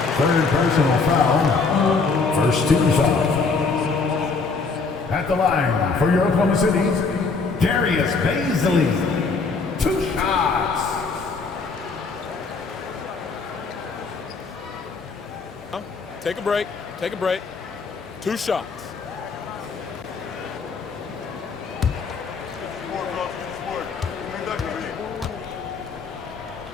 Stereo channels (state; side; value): quieter; right; 4.4 dB